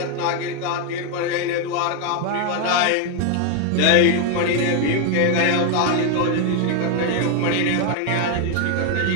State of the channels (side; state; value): both; different; correlation 0.01